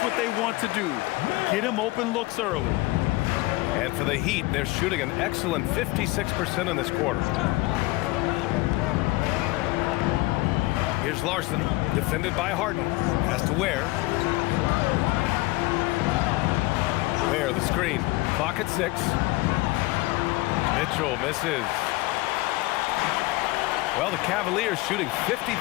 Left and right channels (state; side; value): quieter; right; 21.0 dB